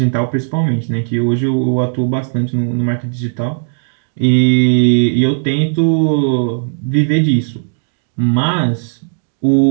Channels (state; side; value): silent; left; digital silence